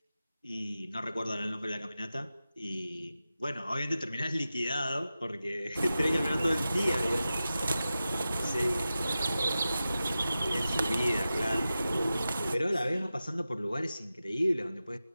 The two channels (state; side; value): inverted; both; correlation -0.94